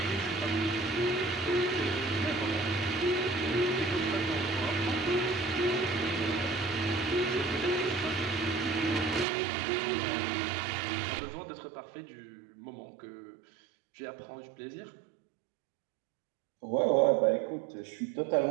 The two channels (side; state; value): left; drops out; at 9.2 s